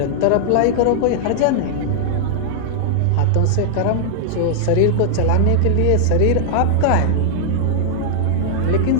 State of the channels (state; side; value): different; both; correlation -0.01